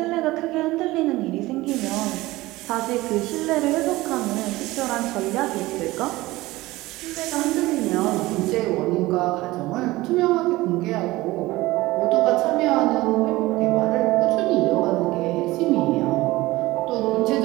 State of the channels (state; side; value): quieter; left; 19.0 dB